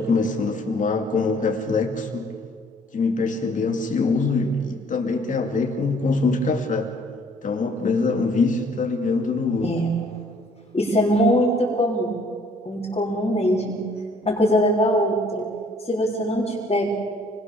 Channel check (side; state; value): both; normal; correlation 0.60